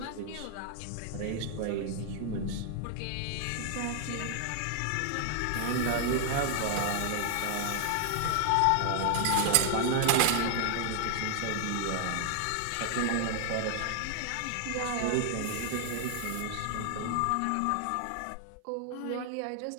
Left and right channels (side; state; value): both; different; correlation 0.00